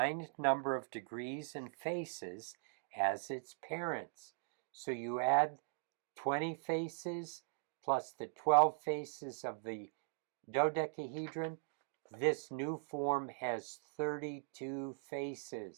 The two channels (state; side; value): silent; left; digital silence